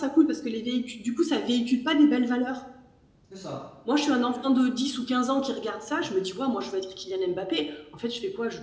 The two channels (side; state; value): both; identical; correlation 1.00